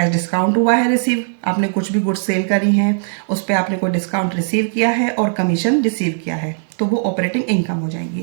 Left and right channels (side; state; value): left; silent; digital silence